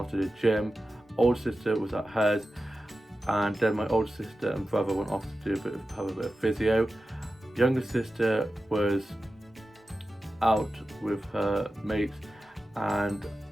to the gym. Older sister was at hers, and then my older sister and brother went off to do have a bit of physio. Younger sister was out with her mates, and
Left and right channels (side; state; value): both; normal; correlation 0.93